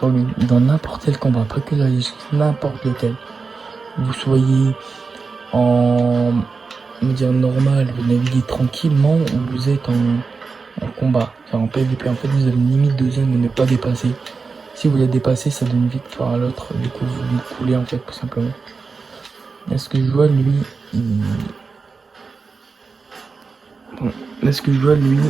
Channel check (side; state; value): left; quieter; 4.6 dB